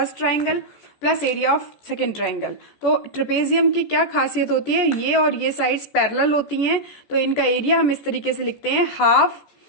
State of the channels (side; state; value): right; late; 14 ms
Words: triangle plus area of second triangle. तो ट्रेपेजियम की क्या खासियत होती है, ये और ये साइड्स पैरेलल होती हैं, तो इनका एरिया हम इस तरीके से लिखते हैं half